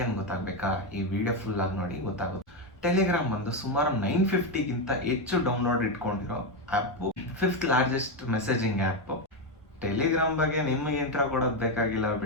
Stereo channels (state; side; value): normal; both; correlation 0.08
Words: ಅಂತ ಗೊತ್ತಾಗಬೇಕಾ? ಈ ವಿಡಿಯೋ ಫುಲ್ ಆಗಿ ನೋಡಿ ಗೊತ್ತಾಗುತ್ತೆ. ಟೆಲಿಗ್ರಾಮ್ ಬಂದು ಸುಮಾರು 950ಗಿಂತ ಹೆಚ್ಚು ಡೌನ್ಲೋಡ್ ಇಟ್ಕೊಂಡಿರೋ app, 5th largest messaging app. Telegram ಬಗ್ಗೆ ನಿಮಗೆ ಇಂಟ್ರಾ ಕೊಡೋದು ಬೇಕಾಗಿಲ್ಲ